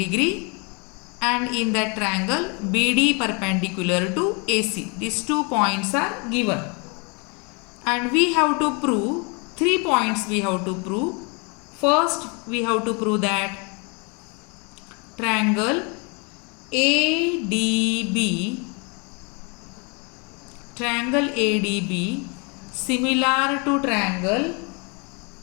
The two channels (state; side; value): quieter; right; 32.7 dB